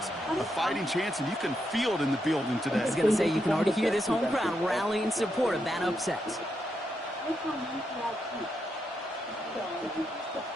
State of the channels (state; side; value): normal; both; correlation 0.82